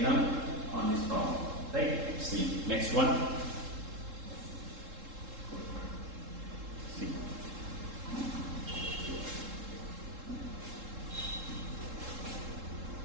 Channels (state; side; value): late; left; 3.7 ms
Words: on this problem. Right? See, next one. See.